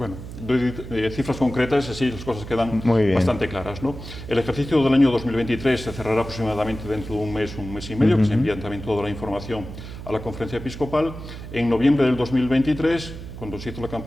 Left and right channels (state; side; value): noise; right; hum, 11 dB below the sound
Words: doy cifras concretas, así las cosas quedan Muy bastante claras, ¿no? El ejercicio del año 2023 se cerrará aproximadamente dentro de un mes y medio, que se envían también toda la información a la Conferencia Episcopal. En noviembre del 2023, cuando se hizo la